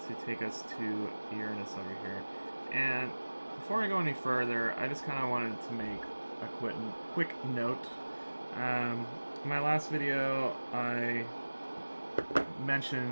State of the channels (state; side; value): inverted; both; correlation -1.00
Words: to take us to Uranus over here. And before I go any further, I just kind of wanted to make a quick note. In my last video, I